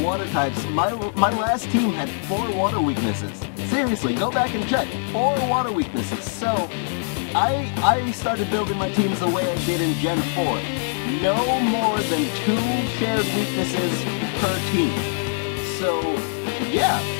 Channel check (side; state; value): right; silent; 64 dB below the other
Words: types, my last team had 4 water weaknesses. Seriously, go back and check. 4 water weaknesses. So I started building my teams the way I did in Gen 4. No more than 2 shared weaknesses per team. So, yeah,